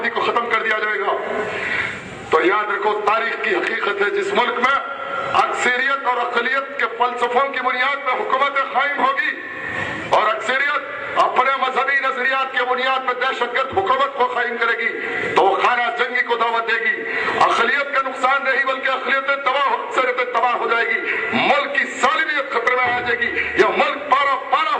को खत्म कर दिया जाएगा। तो याद रखो, तारीख की हकीकत है, जिस मुल्क में अक्सरियत और अकलियत के फलसफों की बुनियाद पर हुकूमत कायम होगी और अक्सरियत अपने मजहबी नजरियात के बुनियाद पर दहशतगर्द हुकूमत को कायम करेगी, तो वो खाना जंगी को दावत देगी। अकलियत का नुकसान नहीं बल्कि अकलियत तबाह हो जाएगी, मुल्क की सालिमियत खतरे में आ जाएगी, यह मुल्क पारा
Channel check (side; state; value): both; identical; correlation 1.00